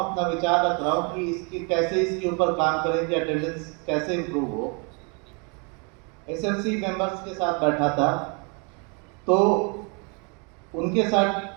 अपना विचार रख रहा हूँ कि कैसे इसके ऊपर काम करें कि अटेंडेंस कैसे इम्प्रूव हो। एसएमसी मेंबर्स के साथ बैठा था, तो उनके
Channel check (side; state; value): left; quieter; 34.3 dB